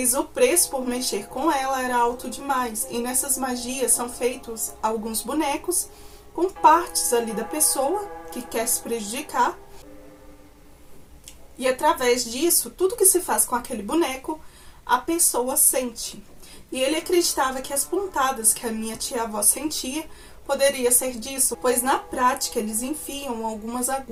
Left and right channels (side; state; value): both; identical; correlation 1.00